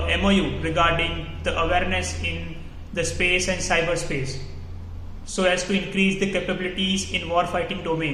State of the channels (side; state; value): both; identical; correlation 1.00